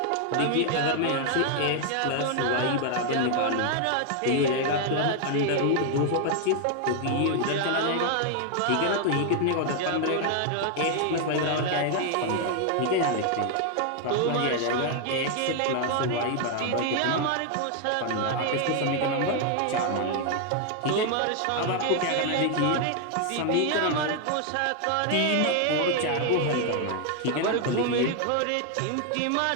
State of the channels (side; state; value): both; different; correlation 0.00